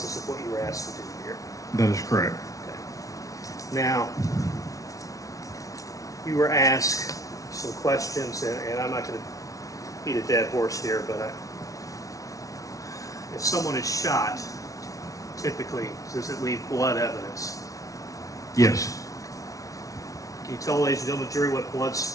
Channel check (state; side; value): late; right; 0.17 ms